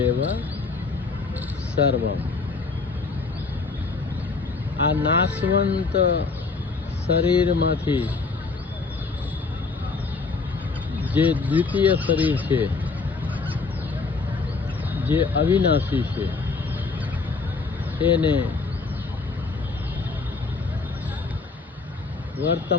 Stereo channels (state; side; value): quieter; right; 4.2 dB